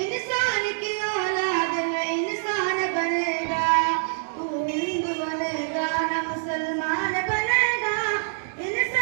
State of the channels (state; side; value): silent; left; digital silence